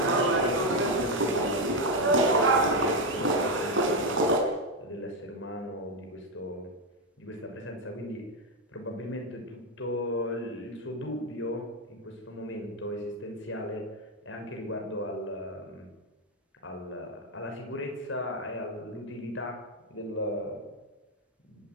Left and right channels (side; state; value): both; normal; correlation 0.06